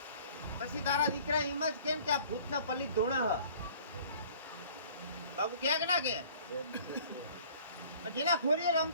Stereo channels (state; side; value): inverted; both; correlation -0.52